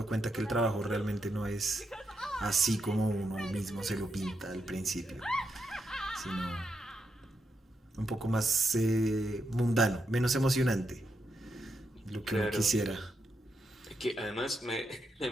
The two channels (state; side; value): normal; both; correlation 0.82